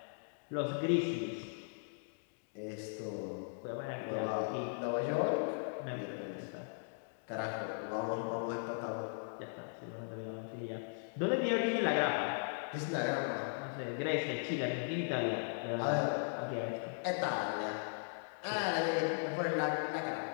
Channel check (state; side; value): silent; right; digital silence